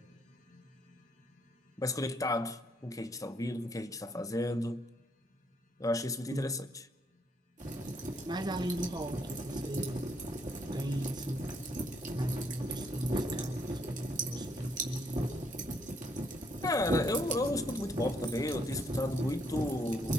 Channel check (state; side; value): normal; both; correlation 0.72